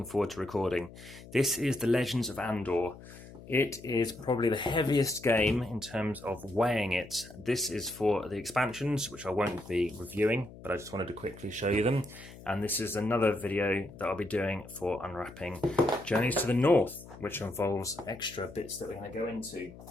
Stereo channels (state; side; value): noise; left; hum, 17 dB below the sound